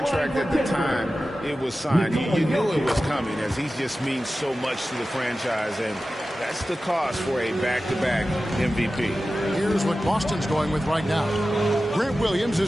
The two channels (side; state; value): both; normal; correlation 0.94